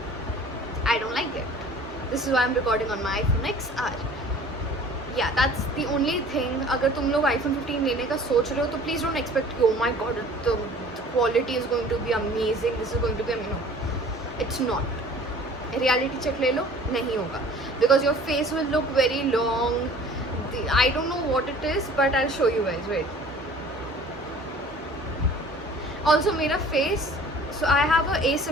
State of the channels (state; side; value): normal; both; correlation 0.48